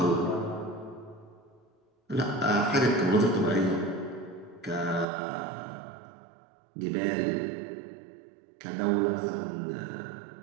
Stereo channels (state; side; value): drops out; left; at 5.1 s